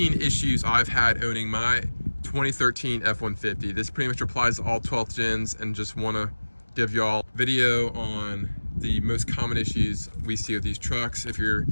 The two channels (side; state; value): both; inverted; correlation -1.00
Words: issues I've had owning my 2013 F-150. This pretty much applies to all 12th gens, and just want to give y'all a video on the most common issues we see with these trucks. If you're